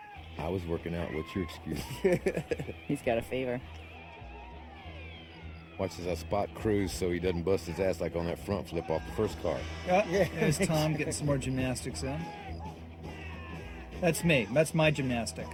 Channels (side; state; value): both; identical; correlation 1.00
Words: I was working out. What's your excuse? He's got a fever. Watch as I spot Cruz so he doesn't bust his ass like on that front flip off the first car. There's Tom getting some more gymnastics in. That's me. That's my gymnastic.